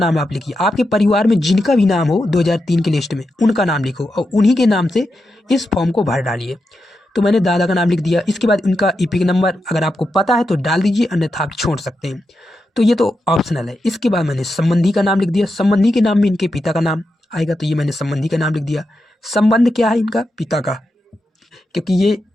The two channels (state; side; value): normal; both; correlation 0.87